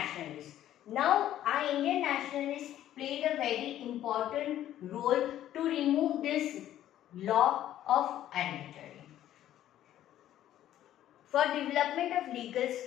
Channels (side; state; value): right; quieter; 12.3 dB